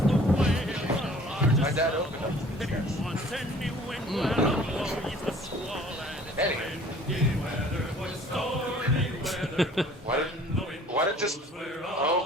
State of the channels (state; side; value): normal; both; correlation 0.52